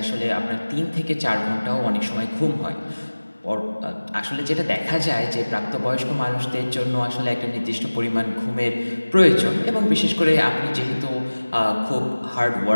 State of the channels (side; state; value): both; inverted; correlation -1.00